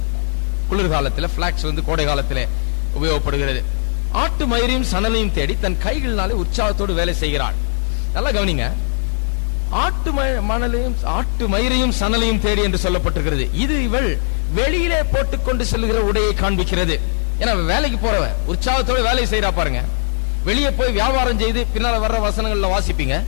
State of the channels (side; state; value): right; silent; digital silence